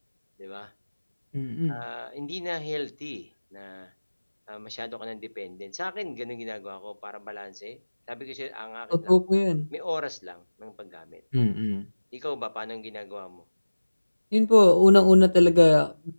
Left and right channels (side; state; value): both; inverted; correlation -1.00